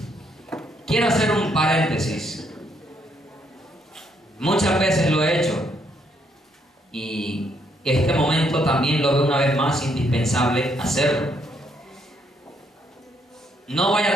Quiero hacer un paréntesis. Muchas veces lo he hecho y este momento también lo veo una vez más indispensable hacerlo. No vaya a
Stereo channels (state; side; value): normal; both; correlation 0.73